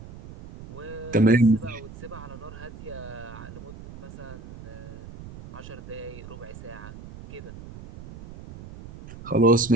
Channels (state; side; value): noise; right; rumble, 15 dB below the sound